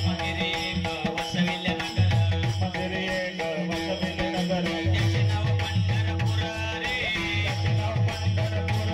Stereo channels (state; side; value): identical; both; correlation 1.00